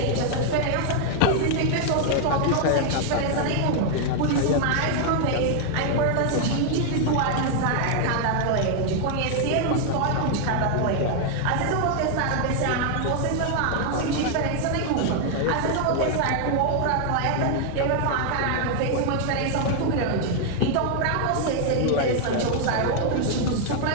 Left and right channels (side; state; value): both; different; correlation 0.00